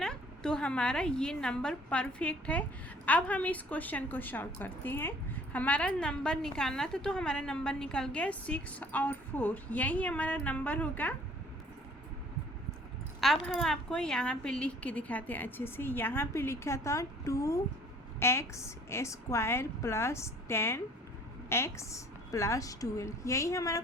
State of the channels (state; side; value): normal; both; correlation 0.54